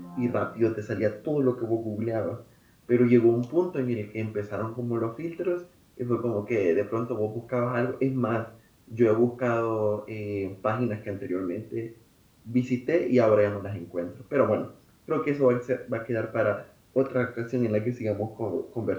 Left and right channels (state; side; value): identical; both; correlation 1.00